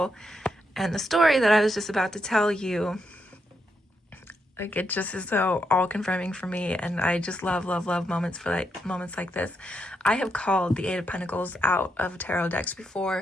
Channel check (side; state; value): both; normal; correlation 0.81